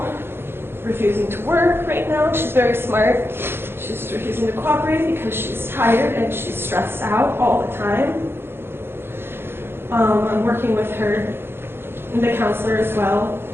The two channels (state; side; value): late; left; 0.11 ms